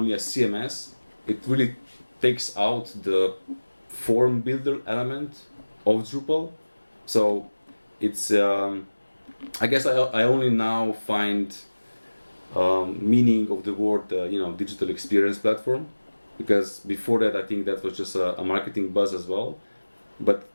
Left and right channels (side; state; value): both; inverted; correlation -1.00